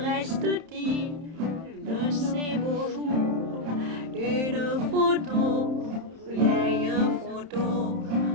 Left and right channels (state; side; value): late; left; 31 ms